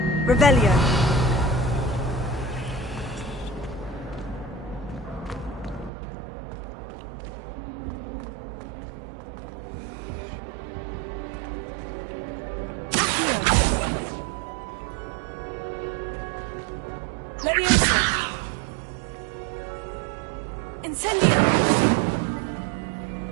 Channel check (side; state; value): left; drops out; at 5.9 s